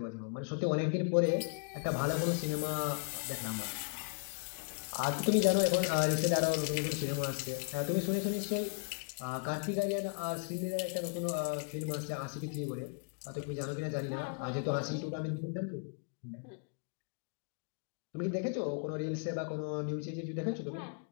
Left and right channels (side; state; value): right; quieter; 37.4 dB